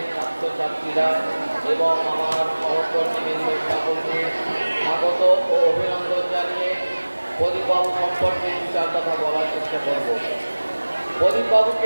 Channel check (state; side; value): inverted; both; correlation -1.00